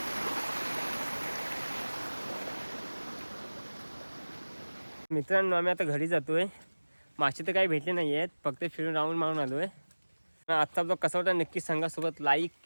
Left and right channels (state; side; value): inverted; both; correlation -1.00